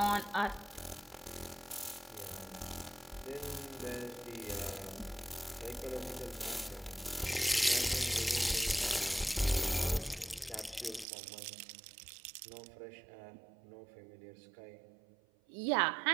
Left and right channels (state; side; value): drops out; left; at 11.1 s